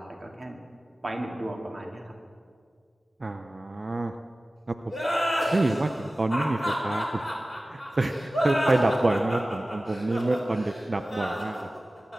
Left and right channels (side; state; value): both; normal; correlation 0.97